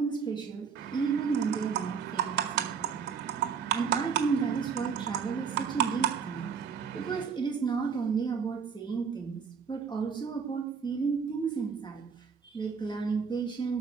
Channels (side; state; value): left; quieter; 6.3 dB